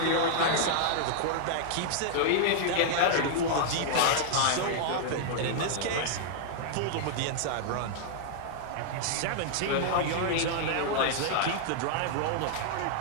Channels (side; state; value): both; different; correlation -0.01